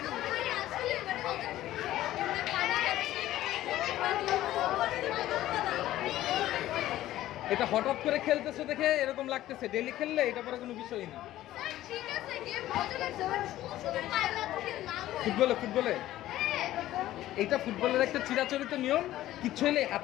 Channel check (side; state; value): right; quieter; 14.4 dB